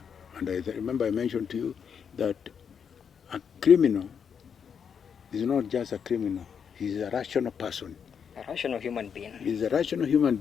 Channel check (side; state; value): right; quieter; 7.2 dB